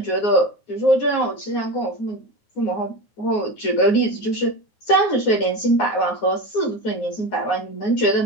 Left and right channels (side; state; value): right; late; 9.5 ms